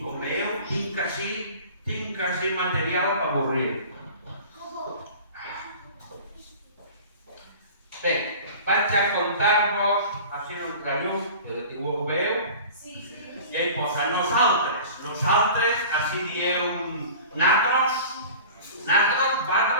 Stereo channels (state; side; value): inverted; both; correlation -0.40